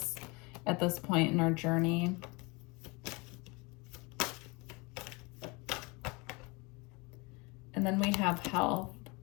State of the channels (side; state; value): right; quieter; 27.1 dB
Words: point in our journey. And then we have health.